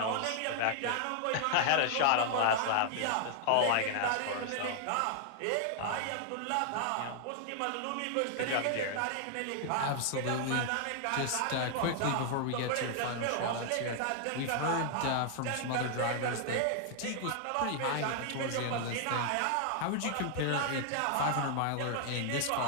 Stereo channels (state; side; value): different; both; correlation 0.00